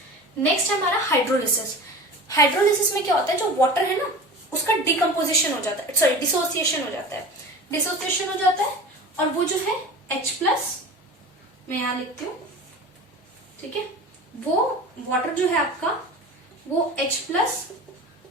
नेक्स्ट है हमारा हाइड्रोलिसिस। हाइड्रोलिसिस में क्या होता है, जो वाटर है ना उसका डिकम्पोजिशन हो जाता है, सॉरी डिसोसिएशन हो जाता है, डिसोसिएशन हो जाता है, और वो जो है H+, मैं यहां लिखती हूँ, ठीक है, वो वाटर जो है आपका वो H+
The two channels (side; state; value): both; normal; correlation 0.35